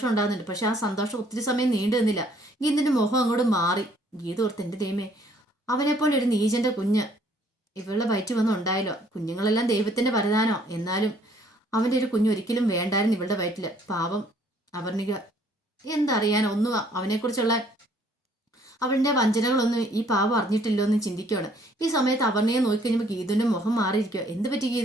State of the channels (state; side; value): normal; both; correlation 0.62